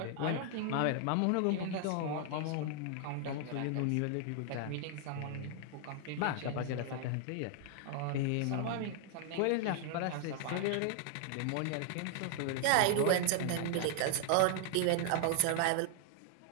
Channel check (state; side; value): different; both; correlation 0.00